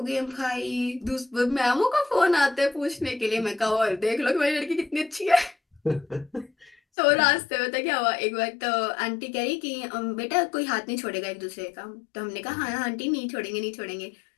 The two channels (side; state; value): right; drops out; at 6.8 s